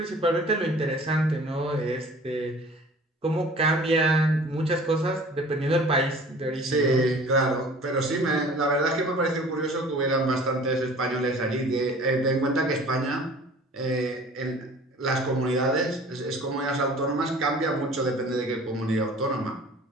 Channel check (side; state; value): both; normal; correlation 0.46